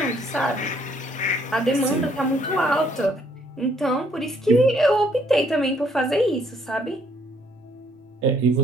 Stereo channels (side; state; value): both; normal; correlation 0.66